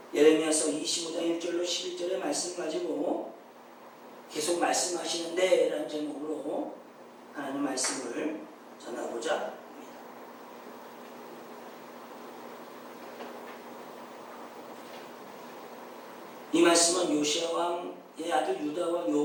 예레미야서 25장 1절로 11절의 말씀 가지고 계속 말씀하시는데 라는 제목으로 하나님 말씀을 전하고자 합니다. 이 말씀은 요시야 왕의 아들 유다와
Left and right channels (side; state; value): both; identical; correlation 1.00